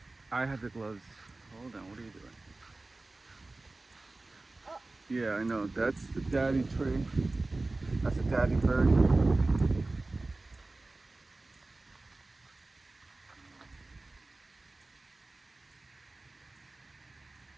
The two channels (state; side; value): quieter; left; 3.2 dB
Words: I have the gloves. Hold on. What are you doing? Oh. Yeah, I know. That's the daddy tree. That's a daddy bird.